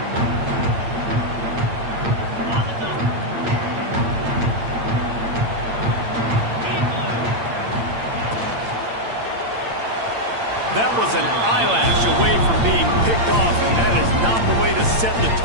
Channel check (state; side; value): late; left; 8.8 ms